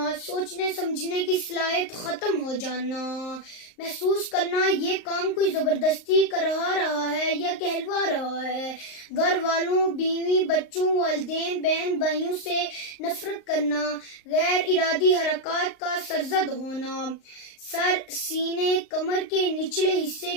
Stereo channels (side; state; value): right; late; 39 ms